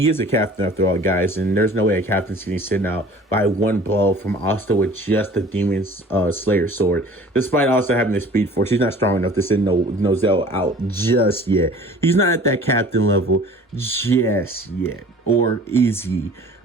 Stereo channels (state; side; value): normal; both; correlation 0.47